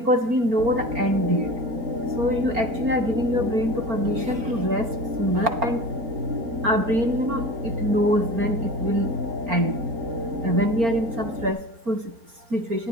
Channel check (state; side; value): late; left; 4.4 ms